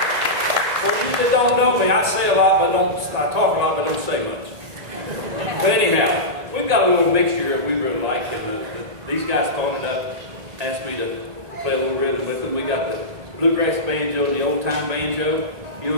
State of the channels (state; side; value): late; left; 1.8 ms